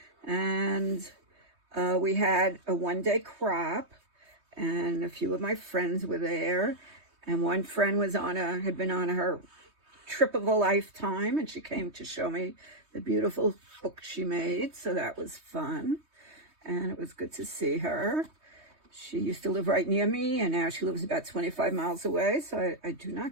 and we had a one-day crop, and a few of my friends were there, and one friend was had been on her trip of a lifetime, and she came to show me the beautiful book she made, so that was fun, and it was good to see her. She used to live right near me, and now she lives about 25 miles away, so I do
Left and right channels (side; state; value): left; late; 3.2 ms